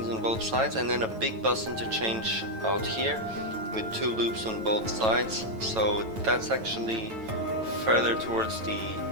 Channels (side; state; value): left; late; 9.0 ms